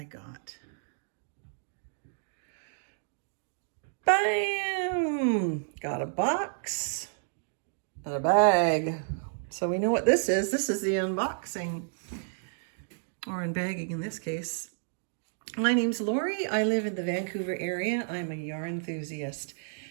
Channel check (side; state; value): left; silent; digital silence